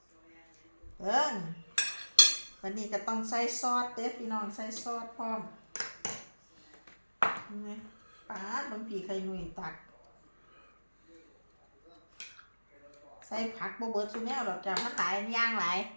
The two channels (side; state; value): both; inverted; correlation -1.00